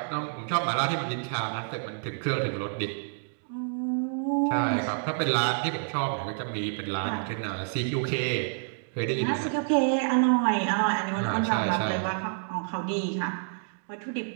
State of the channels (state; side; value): silent; left; digital silence